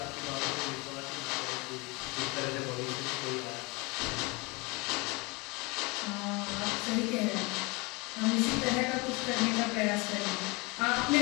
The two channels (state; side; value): quieter; right; 26.9 dB